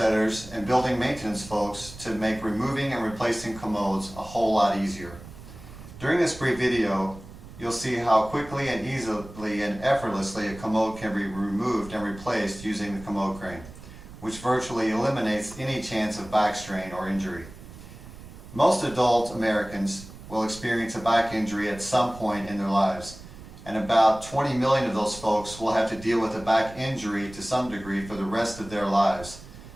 and building maintenance folks to make removing and replacing commodes a whole lot easier. During this brief video, you'll see how quickly and easily and effortlessly a commode can be removed and replaced using the Commode crane, which virtually eliminates any chance of back strain or injury. Most adult Americans will experience a back injury at some point in their lives, and about 20 million of those folks will have to deal with a back injury to some degree for the rest of their lives.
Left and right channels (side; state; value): right; noise; rumble, 16 dB below the sound